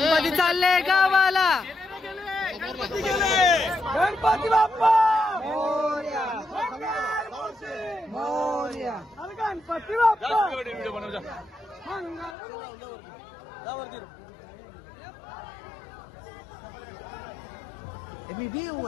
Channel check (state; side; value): drops out; right; at 12.4 s